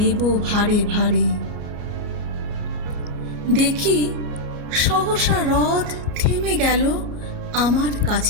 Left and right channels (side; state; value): left; late; 33 ms